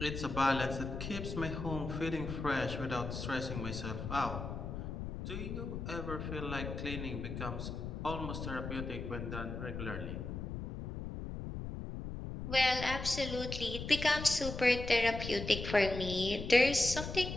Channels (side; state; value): left; noise; rumble, 6 dB below the sound